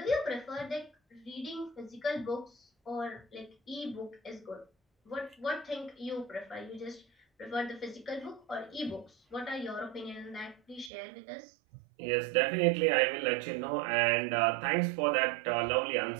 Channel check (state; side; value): drops out; left; at 10.9 s